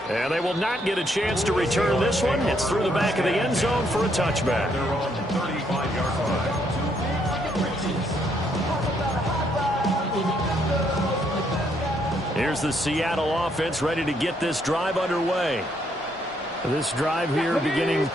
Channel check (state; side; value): normal; both; correlation 0.72